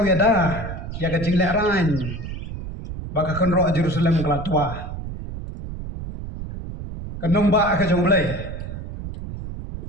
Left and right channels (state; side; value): noise; right; rumble, 8 dB below the sound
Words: ya dah, ya kecing leran, baka kenrok Jerusalem kelatua, kenong ba ke jomblay,